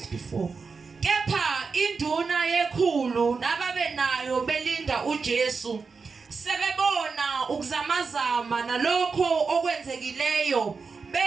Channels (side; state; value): left; quieter; 4.9 dB